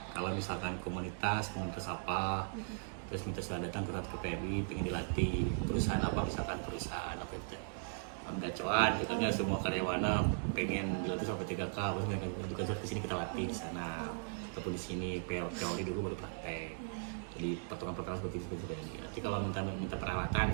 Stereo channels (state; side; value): silent; left; digital silence